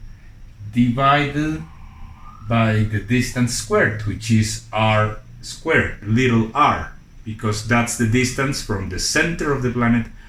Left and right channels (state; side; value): identical; both; correlation 1.00